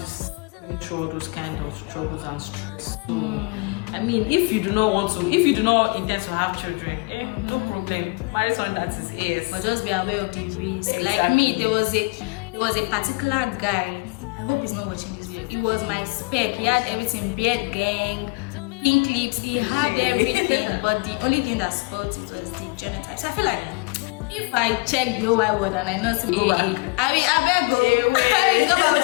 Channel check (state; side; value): quieter; right; 29.6 dB